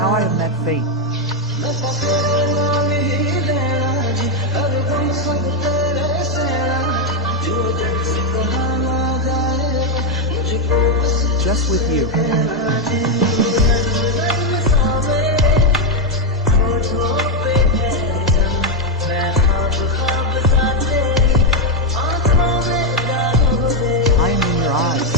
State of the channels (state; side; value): normal; both; correlation 0.04